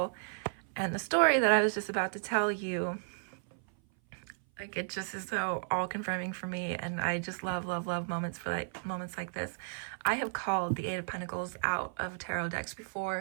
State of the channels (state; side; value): silent; left; 55 dB below the other